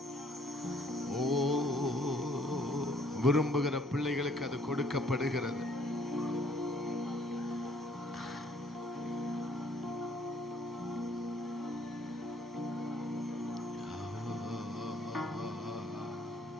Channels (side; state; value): both; normal; correlation 0.62